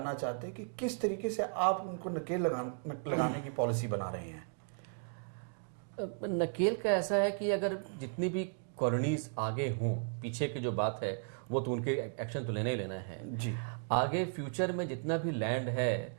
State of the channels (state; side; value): silent; left; 54 dB below the other